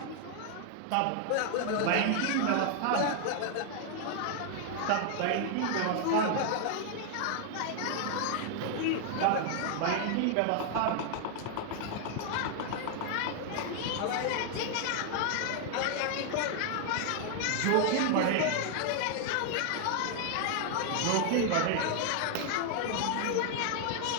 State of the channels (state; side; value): different; both; correlation 0.00